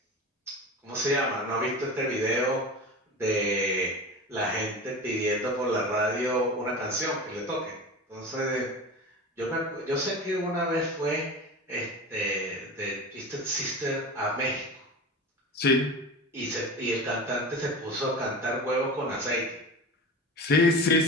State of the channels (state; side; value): normal; both; correlation 0.31